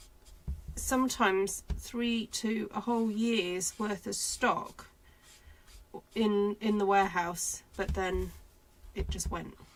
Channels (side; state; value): both; identical; correlation 1.00